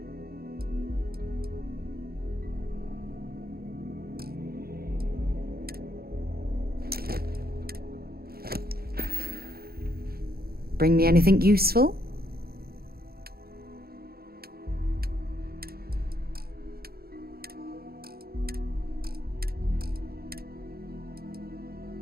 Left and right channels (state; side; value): late; left; 0.44 ms